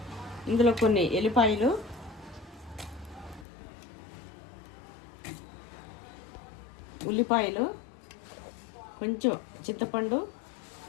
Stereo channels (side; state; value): right; drops out; at 3.5 s